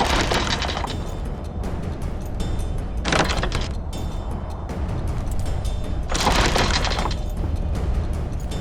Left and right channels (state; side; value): identical; both; correlation 1.00